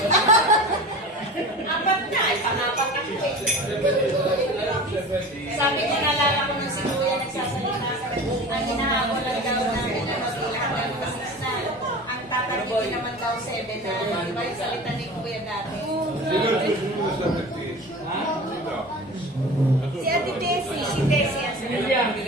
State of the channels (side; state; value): both; normal; correlation 0.35